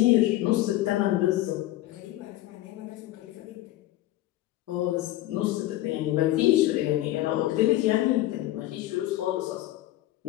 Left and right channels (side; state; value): right; quieter; 15.5 dB